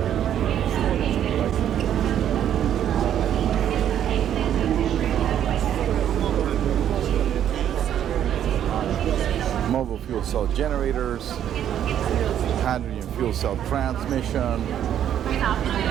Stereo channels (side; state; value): left; quieter; 10.2 dB